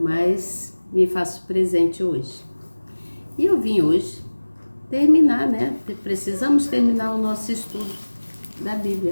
me faço presente hoje. E eu vim hoje terminar, né? Precisamos terminar o nosso estudo da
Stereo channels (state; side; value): inverted; both; correlation -1.00